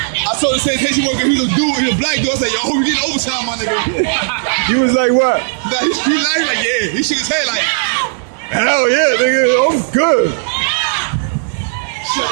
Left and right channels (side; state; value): left; silent; digital silence